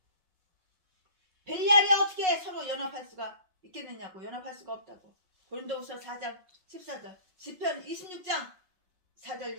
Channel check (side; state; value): left; late; 5.4 ms